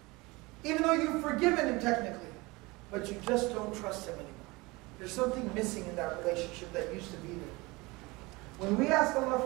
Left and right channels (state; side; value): quieter; left; 23.6 dB